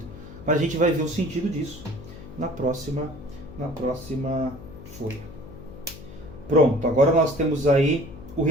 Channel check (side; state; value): left; noise; hum, 15 dB below the sound